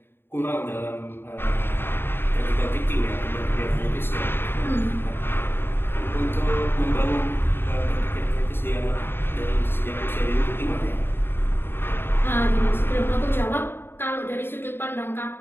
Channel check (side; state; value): right; late; 0.11 ms